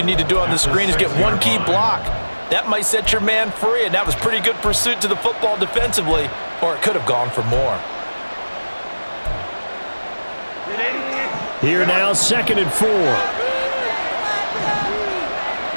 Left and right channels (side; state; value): both; inverted; correlation -1.00